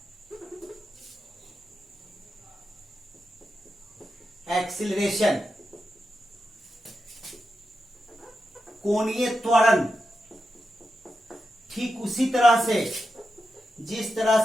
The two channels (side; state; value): both; normal; correlation 0.88